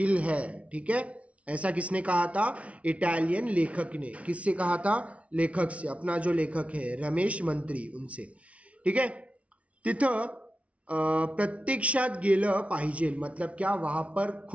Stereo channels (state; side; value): late; left; 0.064 ms